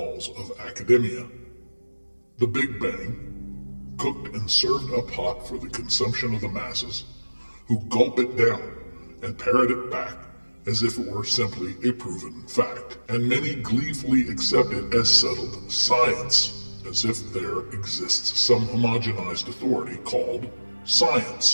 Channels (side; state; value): both; inverted; correlation -1.00